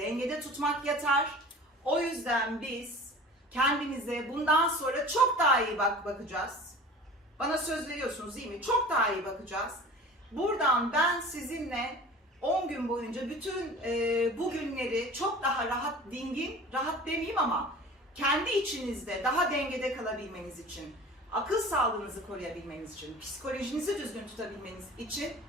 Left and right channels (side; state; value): both; normal; correlation 0.41